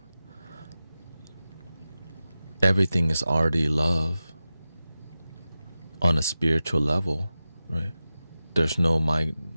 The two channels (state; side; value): inverted; both; correlation -0.93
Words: Everything is already love on a spiritual level, right? There's no